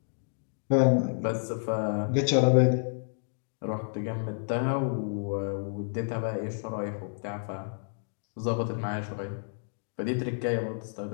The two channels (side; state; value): right; silent; digital silence